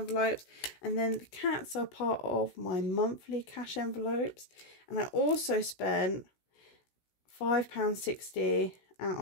and then the cats are part of my monthly cash envelopes. And I also spent £5.60 out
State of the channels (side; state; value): right; late; 16 ms